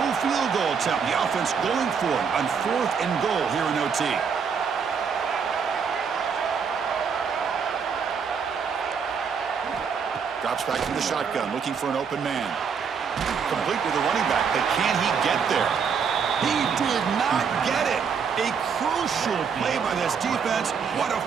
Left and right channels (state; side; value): quieter; left; 6.4 dB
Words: field goal attempt. The offense going for it on 4th and goal here in OT. Drops back from the shotgun, looking for an open man. Complete with the running back, but can he get there? He did not get it. A crucial play by this defense. What a